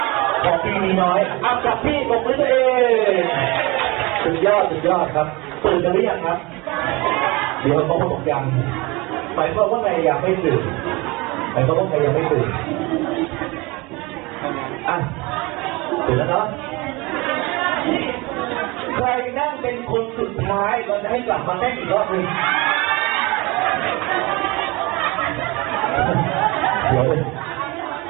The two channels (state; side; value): quieter; left; 24.2 dB